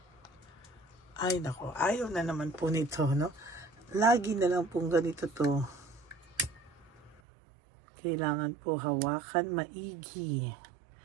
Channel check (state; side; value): drops out; left; at 7.2 s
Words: Ay nako, ayaw na naman po nito, no? Lagi na lang pong ganito to. Kailangan po hawakan maigi.